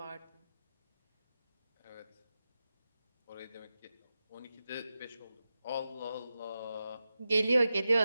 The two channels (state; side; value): inverted; both; correlation -0.92